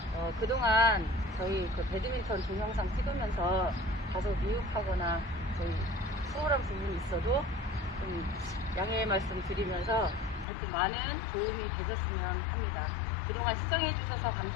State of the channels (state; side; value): drops out; right; at 10.5 s